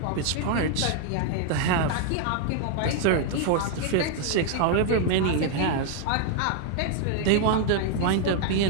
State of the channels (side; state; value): both; different; correlation 0.00